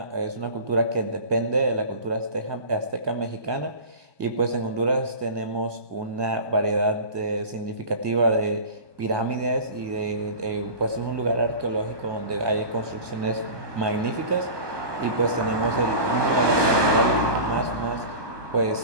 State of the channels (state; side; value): late; left; 1.2 ms